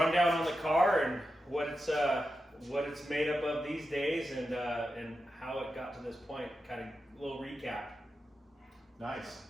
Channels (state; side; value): normal; both; correlation 0.89